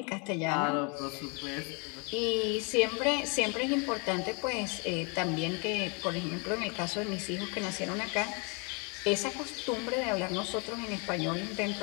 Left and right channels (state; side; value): quieter; right; 33.0 dB